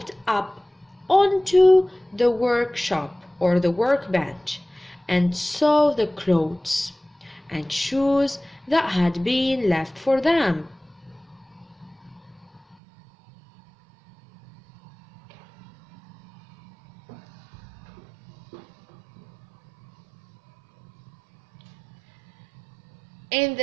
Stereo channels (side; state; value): left; drops out; at 12.8 s